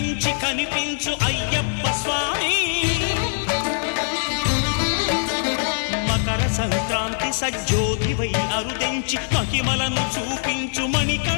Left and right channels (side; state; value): right; silent; digital silence